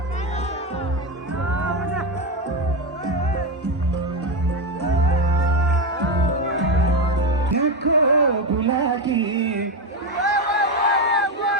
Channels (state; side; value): normal; both; correlation 0.12